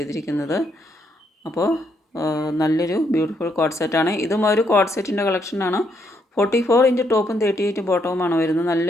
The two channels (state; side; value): normal; both; correlation 0.75